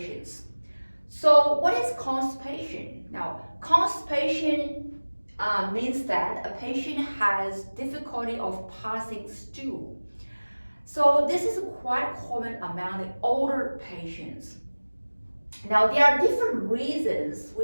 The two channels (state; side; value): inverted; both; correlation -1.00